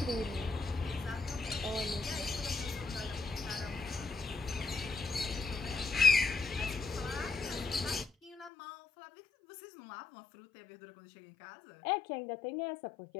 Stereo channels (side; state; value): right; drops out; at 8.5 s